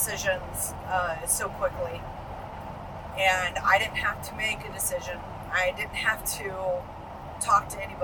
so quickly. And I didn't have to make a decision. I didn't have to talk to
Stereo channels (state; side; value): identical; both; correlation 1.00